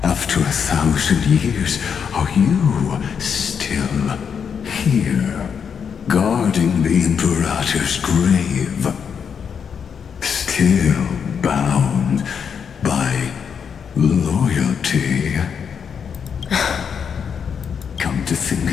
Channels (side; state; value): right; quieter; 7.0 dB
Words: after 1,000 years, are you still here, guarding the Imperator's grave? Still bound by loyalty? Come to think